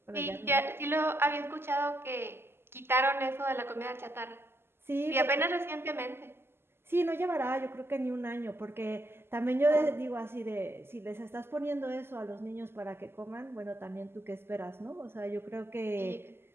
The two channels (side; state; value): left; late; 0.12 ms